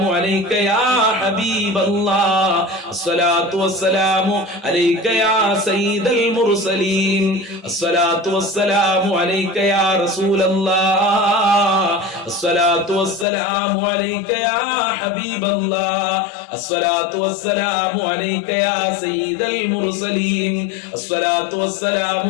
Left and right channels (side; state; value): right; drops out; at 13.2 s